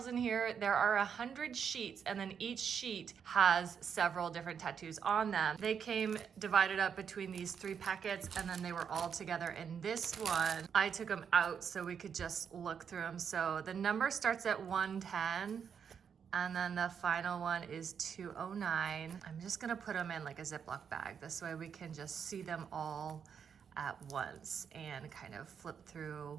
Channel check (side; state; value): left; quieter; 7.2 dB